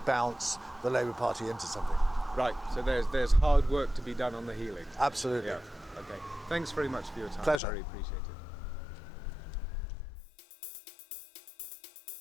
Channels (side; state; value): right; drops out; at 7.6 s